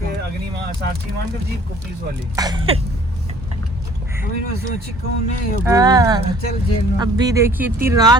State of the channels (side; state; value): both; normal; correlation 0.55